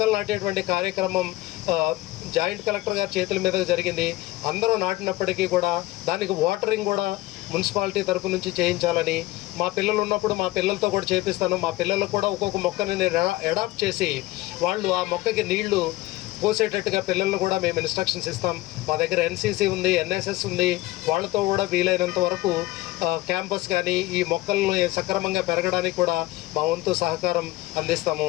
నాటేటువంటి కార్యక్రమం జాయింట్ కలెక్టర్ గారి చేతుల మీద జరిగింది. అందరూ నాటినప్పటికీ కూడా దానికి వాటరింగ్ కూడా మున్సిపాలిటీ తరపు నుంచి చేయించాలని, మా పిల్లలు ఉన్నప్పుడు మా పిల్లలతో కూడా చేపిస్తాను. మా పిల్లలకు కూడా ఒక్కొక్క మొక్కని నేను అడాప్ట్ చేసి వాళ్ళు ఆ మొక్కకి నీళ్లు పోసేటట్టుగా పిల్లలను కూడా మేము ఇన్స్ట్రక్షన్స్ ఇస్తాం. మా దగ్గర ఎన్సీసీ ఉంది, ఎన్ఎస్ఎస్ ఉంది. వాళ్ళతో కూడా వీలైనంత వరకు క్యాంపస్ కానీ ఈ మొక్కలను సక్రమంగా పెరగడానికి కూడా మా వంతు సహకారం అందిస్తాము.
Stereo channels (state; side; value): quieter; right; 18.3 dB